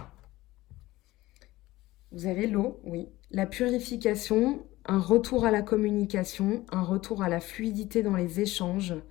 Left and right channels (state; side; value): quieter; right; 18.0 dB